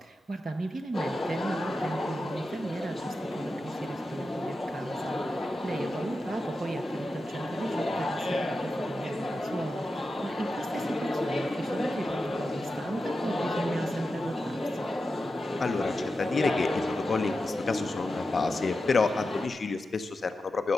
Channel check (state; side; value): normal; both; correlation 0.91